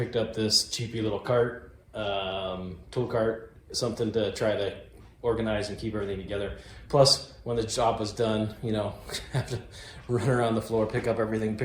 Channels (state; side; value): identical; both; correlation 1.00